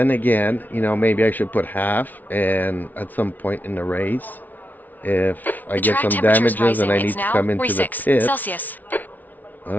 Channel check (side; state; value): right; late; 0.080 ms